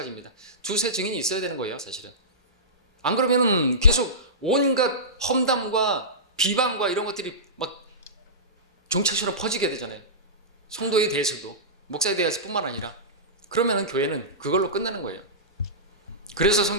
두세 증인이 있어야 되는 거예요, 사실은. 안 그러면은 계속 온갖 험담과 비방과 이런 것들이 막 종착처럼 퍼지게 되잖아요. 성도에 대해서도, 목사에 대해서뿐만 아니라. 그러면은 교회는 그걸로 끝나는 거예요. 그래서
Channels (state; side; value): normal; both; correlation -0.19